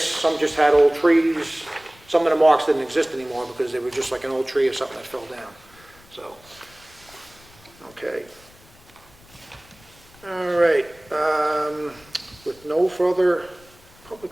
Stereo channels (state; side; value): noise; left; rumble, 26 dB below the sound